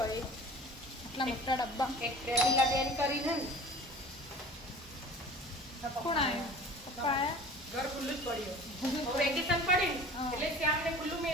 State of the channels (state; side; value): normal; both; correlation 0.42